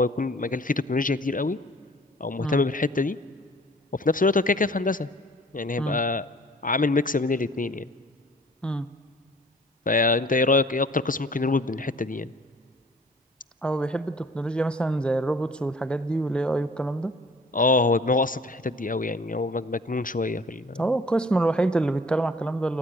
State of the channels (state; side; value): normal; both; correlation 0.52